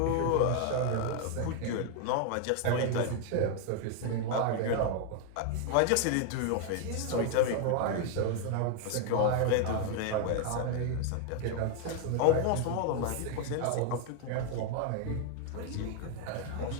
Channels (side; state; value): both; different; correlation 0.00